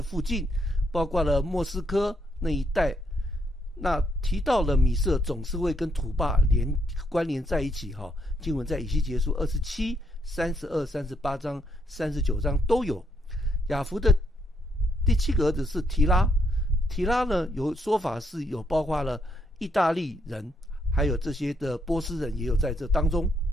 附近，包括了莫斯科那一带。那提到了米色，总是会跟土巴关联在一起哈。经文在以西结书27、32、38章、39章都有。雅弗的第七个儿子是提拉，提拉呢有说法是有包括了意大利人，还有这些的波斯人也有在这当中。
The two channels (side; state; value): both; normal; correlation 0.75